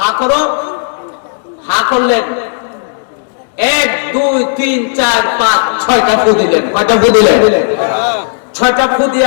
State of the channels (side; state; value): right; silent; digital silence